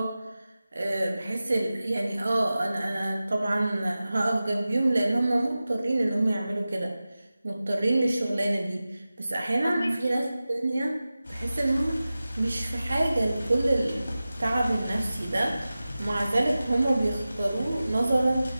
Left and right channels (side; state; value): both; inverted; correlation -0.96